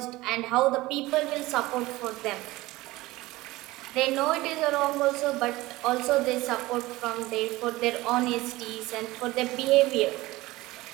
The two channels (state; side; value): quieter; left; 19.2 dB